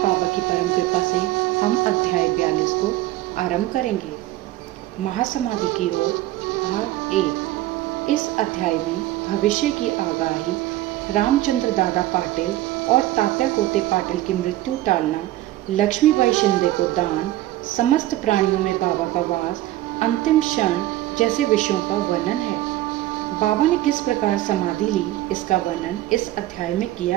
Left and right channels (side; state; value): left; quieter; 15.8 dB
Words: बाबा की परम कृपा से हम अध्याय 42 को आरंभ करेंगे। महासमाधि की ओर भाग 1। इस अध्याय में भविष्य की आगाही, रामचंद्र दादा पाटिल और तात्या कोते पाटिल की मृत्यु टालना, लक्ष्मीबाई शिंदे को दान, समस्त प्राणियों में बाबा का वास, अंतिम क्षण जैसे विषयों का वर्णन है। बाबा ने किस प्रकार समाधि ली, इसका वर्णन इस अध्याय में